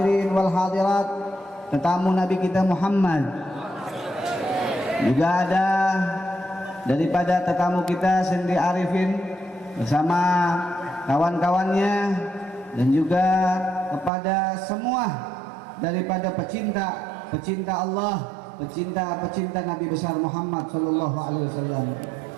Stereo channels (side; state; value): left; drops out; at 14.1 s